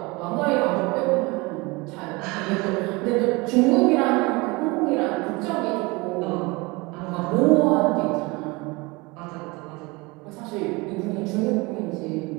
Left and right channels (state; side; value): quieter; left; 24.9 dB